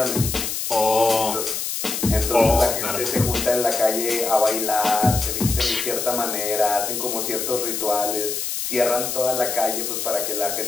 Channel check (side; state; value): left; noise; hiss, 3 dB below the sound